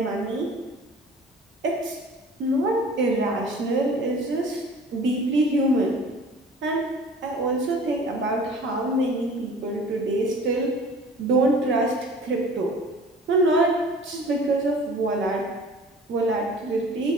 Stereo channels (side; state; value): both; normal; correlation 0.45